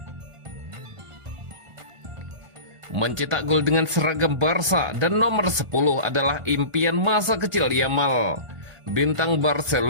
Mencetak gol dengan seragam Barca dan nomor 10 adalah impian masa kecil Yamal. Bintang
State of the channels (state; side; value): late; left; 1.5 ms